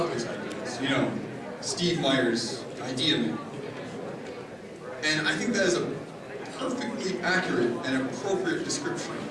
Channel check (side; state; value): both; identical; correlation 1.00